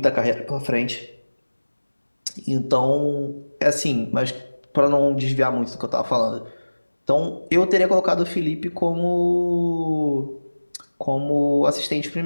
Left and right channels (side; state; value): both; inverted; correlation -1.00